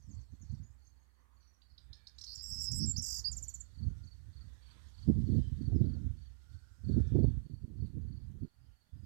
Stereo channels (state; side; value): silent; left; 51 dB below the other